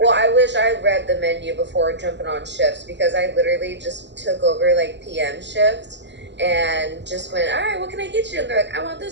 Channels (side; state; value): left; late; 0.51 ms